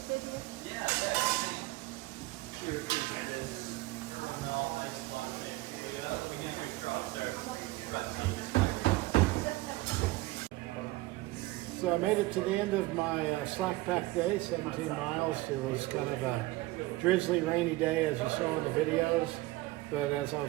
Yeah, So I made it to the end of my slack pack day, 17 miles. It was kind of a drizzly, rainy day, as you saw in the videos. But as I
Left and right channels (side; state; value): left; quieter; 19.8 dB